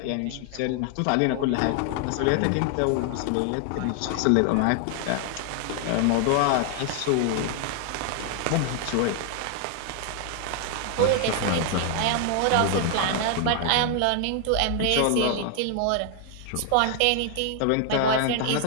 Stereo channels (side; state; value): both; different; correlation 0.00